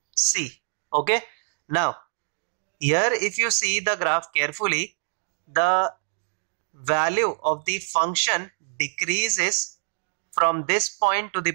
C. Okay, now here if you see the graph carefully, the value of the function decreases from this point to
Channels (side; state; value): left; silent; digital silence